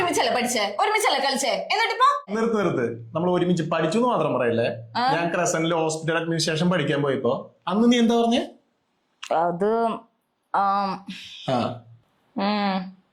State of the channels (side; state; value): both; identical; correlation 1.00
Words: പഠിച്ചേ, ഒരുമിച്ചല്ലേ കളിച്ചേ, എന്നിട്ടിപ്പോ നിർത്ത്. നമ്മൾ ഒരുമിച്ച് പഠിച്ചു എന്ന് മാത്രം പറയല്ലേ. ഞാൻ ക്രസന്റിൽ ഹോസ്പിറ്റൽ അഡ്മിനിസ്ട്രേഷൻ പഠിക്കാൻ പോയപ്പോ അന്ന് നീ എന്താ പറഞ്ഞേ? അത്